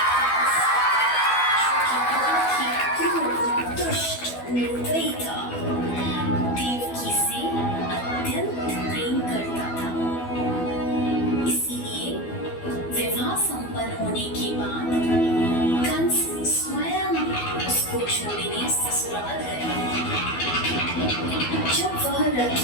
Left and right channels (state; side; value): late; right; 12 ms